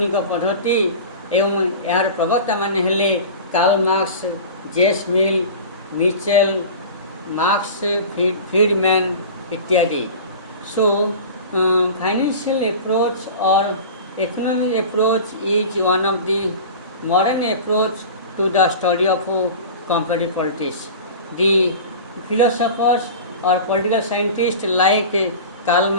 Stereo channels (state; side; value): inverted; both; correlation -0.35